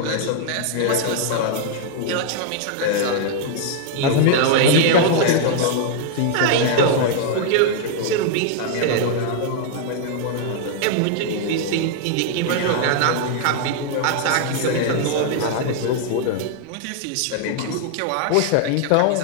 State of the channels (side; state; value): both; different; correlation 0.00